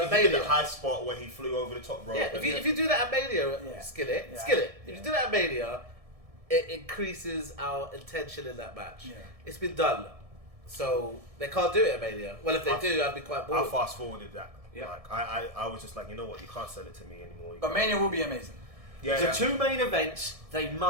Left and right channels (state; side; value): late; left; 1.7 ms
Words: he at did the Mania. high spot where he flew over the top rope. Yeah, if you do that at Mania, Yeah. Skillit. Yeah. If you do that at Mania, it increases our intention in that match. Yeah. It's been done, so they can't do it at Mania. Well, if they do, I'd be quite I bored. fast forwarded that. Yeah. Like I was just like, you know what, you can't sell it to me anymore. You But can't. Mania will be amazing. Yeah, The yeah. two main events, they